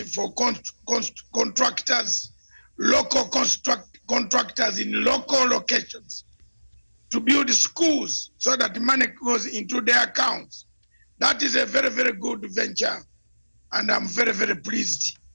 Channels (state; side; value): inverted; both; correlation -1.00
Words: for contractors, local contractors in local locations to build schools so that money goes into their accounts. That is a very, very good venture. And I'm very, very pleased